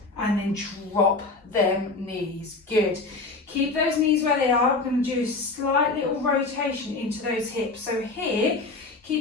and then drop them knees. Good. Keep those knees where they are. I'm going to do a slight little rotation into those hips. So here,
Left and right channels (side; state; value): right; quieter; 3.6 dB